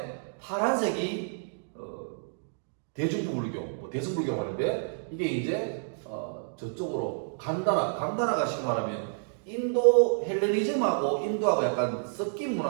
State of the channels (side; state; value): left; silent; digital silence